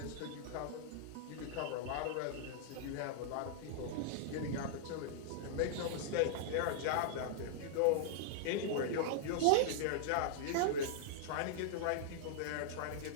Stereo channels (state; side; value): different; both; correlation -0.01